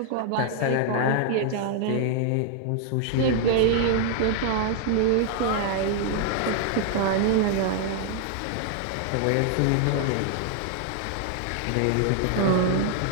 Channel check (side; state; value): both; different; correlation 0.00